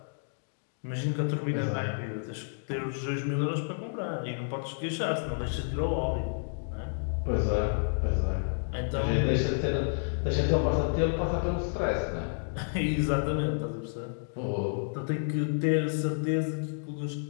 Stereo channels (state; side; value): silent; right; digital silence